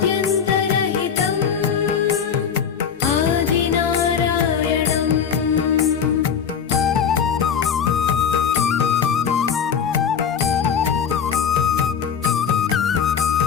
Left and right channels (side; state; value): right; quieter; 7.3 dB